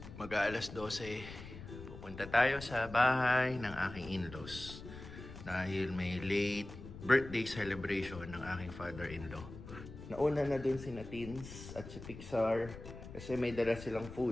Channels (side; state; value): left; noise; rumble, 13 dB below the sound